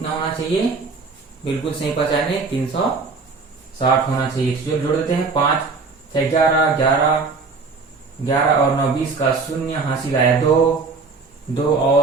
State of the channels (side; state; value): left; quieter; 4.4 dB